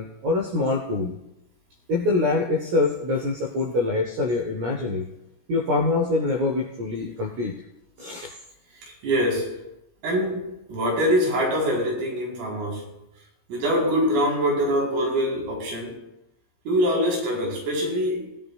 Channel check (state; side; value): late; left; 17 ms